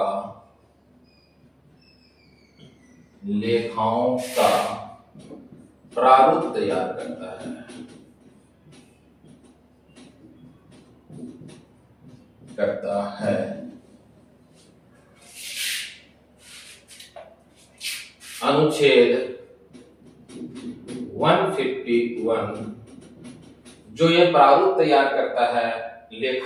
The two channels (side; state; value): both; identical; correlation 1.00